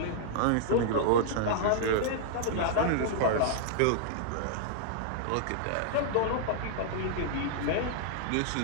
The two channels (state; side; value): different; both; correlation -0.01